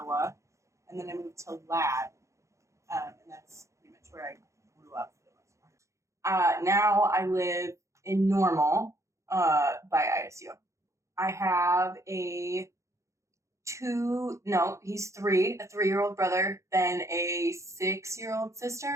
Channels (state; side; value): late; left; 0.15 ms